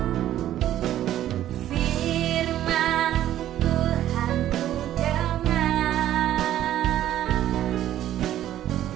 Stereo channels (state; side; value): quieter; left; 12.4 dB